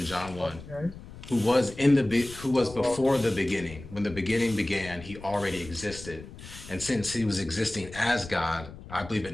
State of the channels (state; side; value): noise; left; rumble, 15 dB below the sound